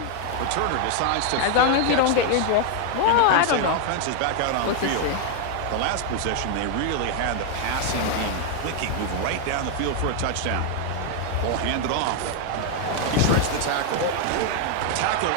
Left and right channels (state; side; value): different; both; correlation 0.00